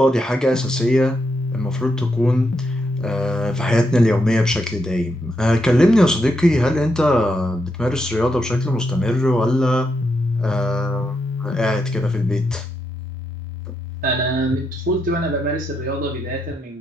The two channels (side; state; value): both; normal; correlation 0.82